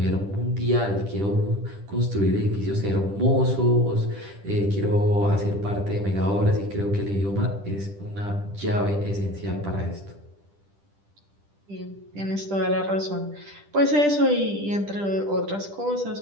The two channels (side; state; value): left; late; 10 ms